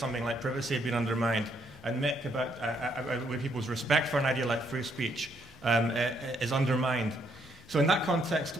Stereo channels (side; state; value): both; normal; correlation 0.72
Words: like privacy had been undermined. And Mick, about where people's respect for an idea like free speech is undermined. So in that context,